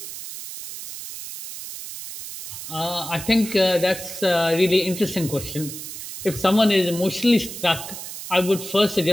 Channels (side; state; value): right; noise; hiss, 10 dB below the sound